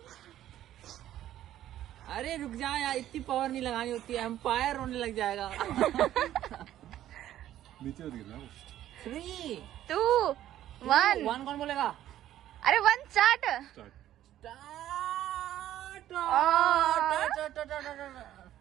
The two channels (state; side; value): quieter; left; 12.5 dB